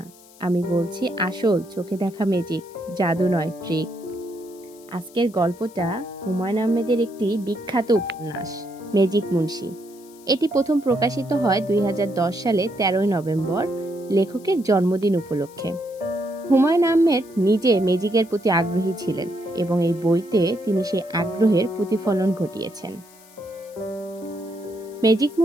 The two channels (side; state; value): left; noise; hiss, 25 dB below the sound